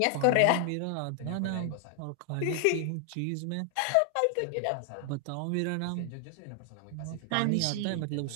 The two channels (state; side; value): different; both; correlation 0.00